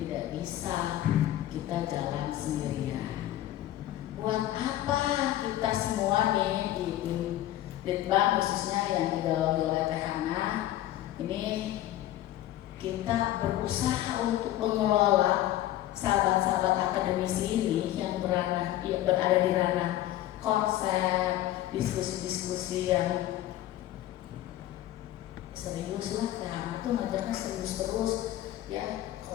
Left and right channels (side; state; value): right; quieter; 14.0 dB